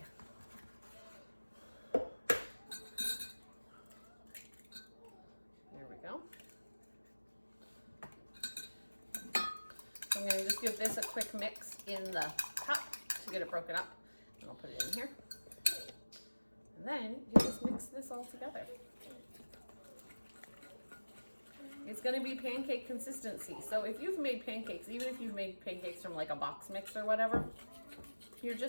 There we go. So I'm going to just give this a quick mix in the cup to get it broken up. And I'll put it in here. And then you just mix this all together. It's going to be pancake consistency. So if you've made pancakes, even if you've made pancakes from like a box mix or whatever, you're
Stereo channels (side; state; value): both; inverted; correlation -1.00